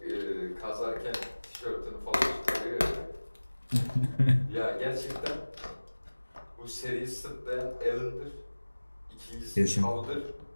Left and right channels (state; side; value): inverted; both; correlation -1.00